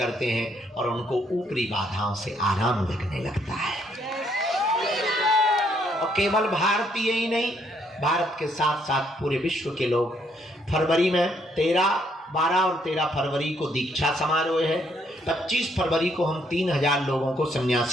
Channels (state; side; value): normal; both; correlation 0.70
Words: हैं और उनको ऊपरी बाधाओं से आराम लगने लगता है। और केवल भारतीय ही नहीं, भारत के साथ साथ पूरे विश्व के लोग। फरवरी में 12 और 13 फरवरी को दीक्षा समारोह है। 25 फरवरी को हम 3000 लोगों को